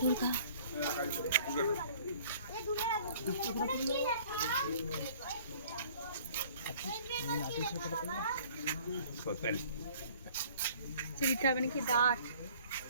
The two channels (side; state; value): both; inverted; correlation -0.53